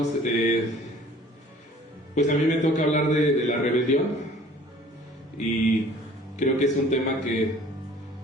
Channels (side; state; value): both; normal; correlation 0.51